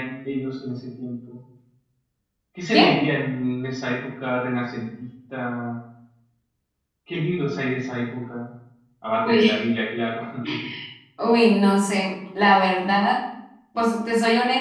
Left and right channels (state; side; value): identical; both; correlation 1.00